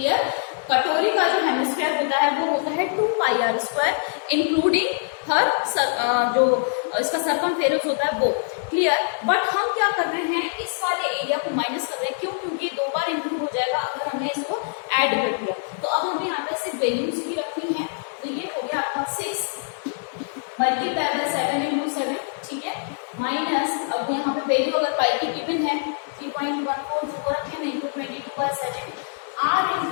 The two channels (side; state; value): right; silent; digital silence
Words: कटोरी का जो हेमिस्फीयर होता है वो होता है 2πr², इंक्लूडिंग हर जो इसका सरकमफेरेंस होता है वो। क्लियर, बट हम क्या कर रहे हैं, इस वाले एरिया को माइनस कर रहे हैं। क्यों, क्योंकि 2 बार इंक्लूड हो जाएगा अगर हमने इसको ऐड कर दिया। तो अब हमें यहाँ पे सिर्फ वैल्यूज ही रखनी है, तो ये हो गया आपका 6 मल्टीप्लाई बाय 7 × 7, ठीक है, माइनस, अब यहाँ पे वैल्यू अगर पाई की गिवन है 3.14 जो रखे हैं, इंटू 22/7 r²